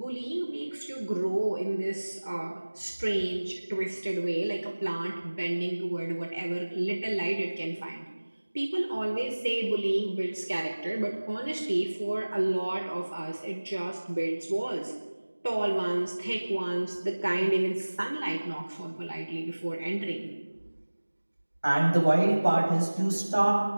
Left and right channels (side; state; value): both; inverted; correlation -1.00